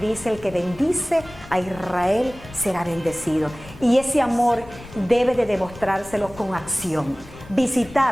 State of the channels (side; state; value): left; noise; rumble, 19 dB below the sound